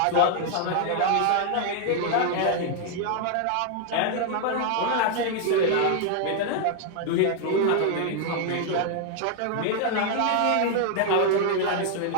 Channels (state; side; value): different; both; correlation 0.00